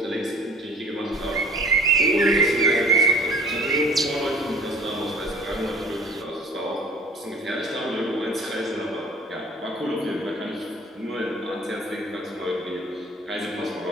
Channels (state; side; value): normal; both; correlation 0.49